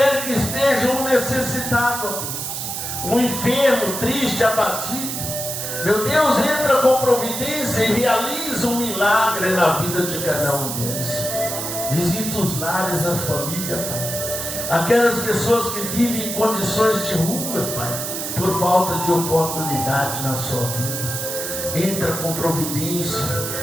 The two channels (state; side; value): noise; right; hiss, 4 dB below the sound